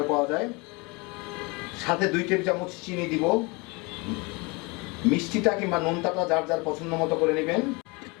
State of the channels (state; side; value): quieter; right; 27.5 dB